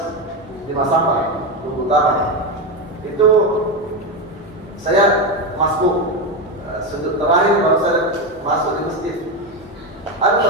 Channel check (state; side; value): normal; both; correlation 0.13